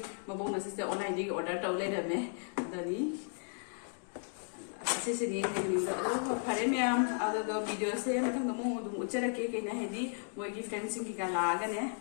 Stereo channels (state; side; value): silent; right; 55 dB below the other